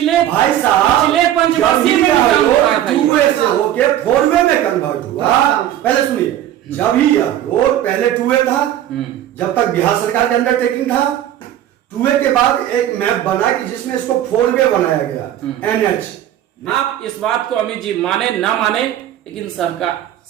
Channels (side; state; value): left; quieter; 11.9 dB